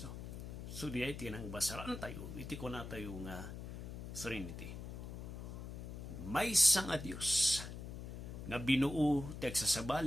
So di ay tinang basaran tayo, iti ko na tayo nga Trinity. May isang nga Diyos nga binuo ti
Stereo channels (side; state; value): left; noise; hum, 8 dB below the sound